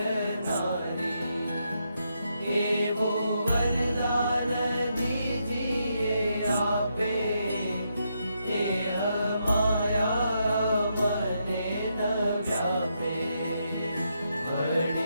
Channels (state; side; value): inverted; both; correlation -0.80